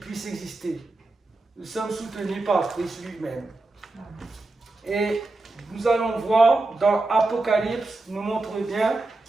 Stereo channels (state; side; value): quieter; left; 3.1 dB